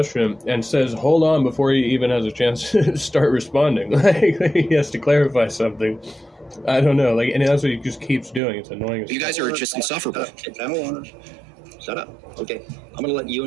and says, "Hold on," before he even has a chance to start responding. Like he has to clarify something. I don't know, and that's what he just keeps doing. It's annoying. You guys are just insufferable. Shut up. Okay, I'm gonna let you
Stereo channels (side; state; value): left; drops out; at 8.4 s